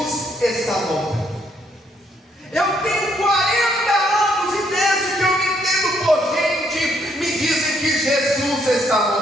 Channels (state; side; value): normal; both; correlation 0.71